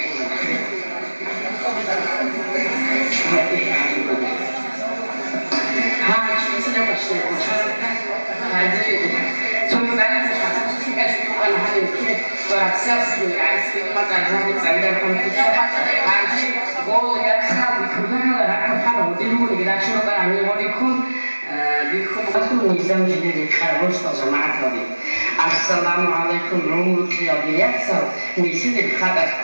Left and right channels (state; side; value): inverted; both; correlation -1.00